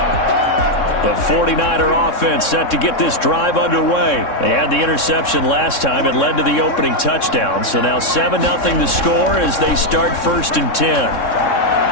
The 49er offense set to get this drive underway. They had the interception last time. It led to the opening touchdown. So now 7-0 the score as they start 1st and 10.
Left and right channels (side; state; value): right; late; 3.6 ms